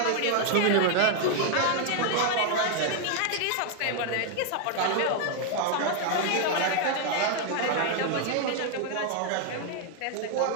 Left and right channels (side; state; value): both; different; correlation 0.00